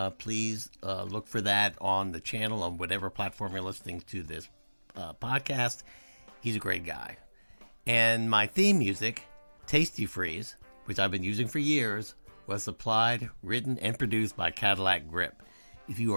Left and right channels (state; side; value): inverted; both; correlation -1.00